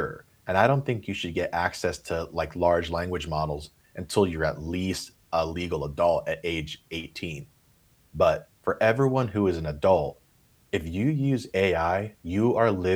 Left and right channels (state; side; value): identical; both; correlation 1.00